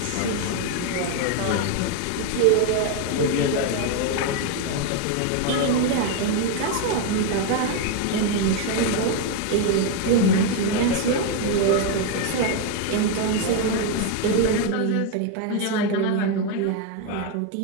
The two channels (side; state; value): both; different; correlation 0.01